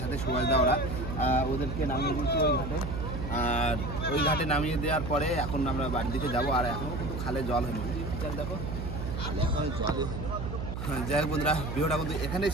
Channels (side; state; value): right; noise; hum, 5 dB below the sound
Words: সাথে সুভাষদা, ওরা ওদেরকে নামিয়ে দিয়েছি ওই ঘাটে। আর ওই ঘাটে নামিয়ে দেওয়ার পরে এখন আমরা বাড়ির দিকে যাবো। আর এখনও কিন্তু খালে জল হয়নি, দেখো খালে এখন জলই হয়নি। যাই হোক বন্ধুরা, ভিডিওটা কিন্তু এখানেই